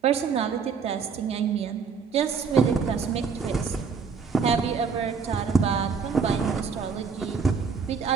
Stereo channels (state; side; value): quieter; left; 5.8 dB